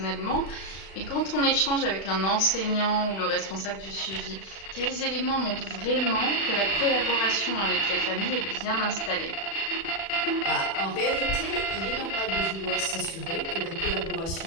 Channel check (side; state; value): right; late; 36 ms